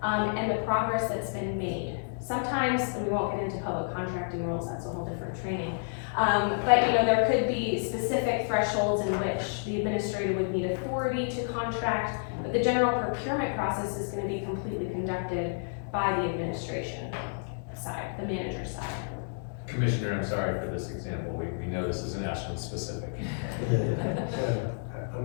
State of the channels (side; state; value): right; silent; digital silence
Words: and the progress that's been made. Sometimes, and we won't get into public contracting rules, that's a whole different training. But there could be specific thresholds in which the administrator would need authority to contract, but the general procurement process is going to be completely conducted by the administration side, the manager side. Commissioner, I'm sorry for this example. We know this isn't Ashland specific.